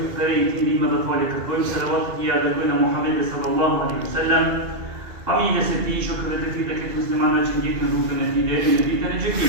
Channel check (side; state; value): left; late; 2.7 ms